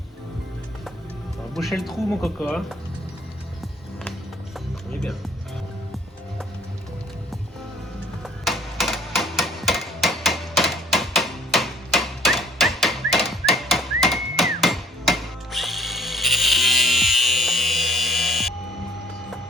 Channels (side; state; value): both; normal; correlation 0.56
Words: On va boucher le trou, mon coco. Hein. On est bien.